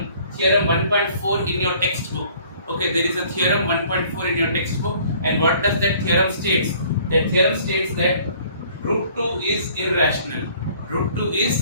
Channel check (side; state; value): both; inverted; correlation -0.56